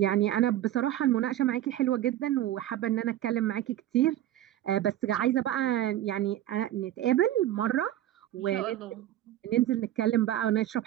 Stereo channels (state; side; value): quieter; left; 13.0 dB